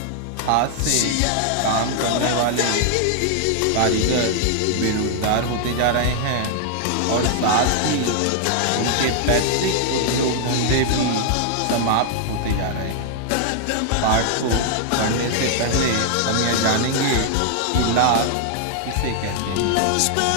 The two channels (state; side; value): different; both; correlation 0.00